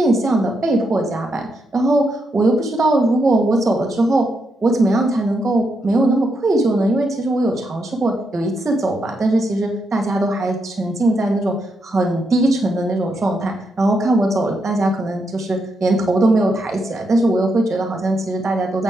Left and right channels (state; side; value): normal; both; correlation 0.81